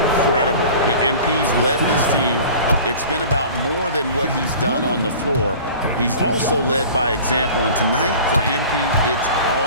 MP's led this team. It's been about more than what he's done on the floor. He's also led by example. And tonight for MP, it's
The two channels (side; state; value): both; inverted; correlation -0.41